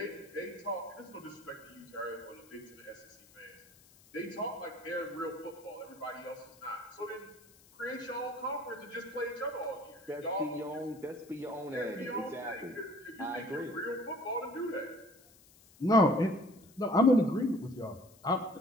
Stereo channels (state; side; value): noise; left; hiss, 25 dB below the sound